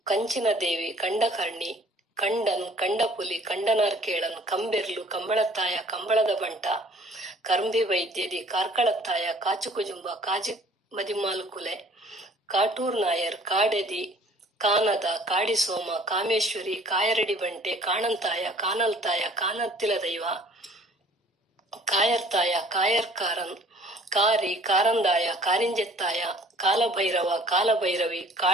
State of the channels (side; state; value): both; normal; correlation 0.53